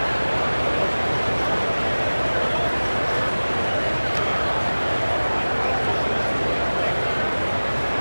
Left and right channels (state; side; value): inverted; both; correlation -1.00